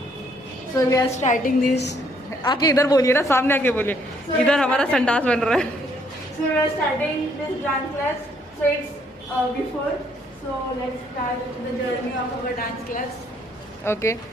So we are starting this. आके इधर बोलिए ना, सामने आके बोलिए। इधर हमारा संडास बन रहा है। So we are starting this dance class. So it's before, so let's start the journey of our dance class. Okay,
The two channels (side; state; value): both; normal; correlation 0.68